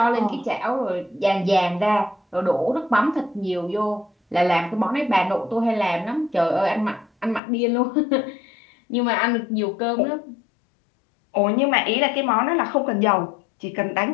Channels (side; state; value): right; drops out; at 7.4 s